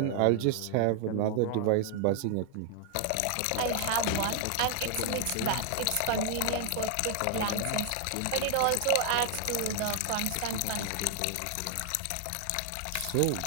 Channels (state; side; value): different; both; correlation 0.00